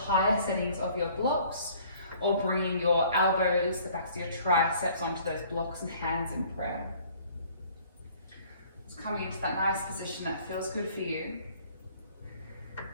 settings of your blocks or bringing your elbows, the backs of your triceps onto those blocks and hands in prayer. Just coming into that nice position that feels good for you.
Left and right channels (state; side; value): inverted; both; correlation -0.55